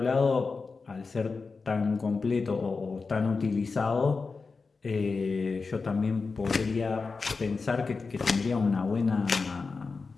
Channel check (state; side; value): quieter; right; 4.4 dB